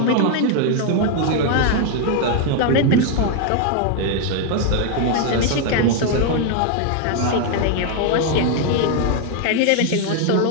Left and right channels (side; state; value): both; different; correlation 0.00